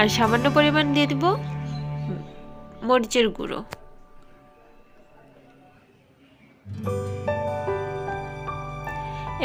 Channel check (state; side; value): identical; both; correlation 1.00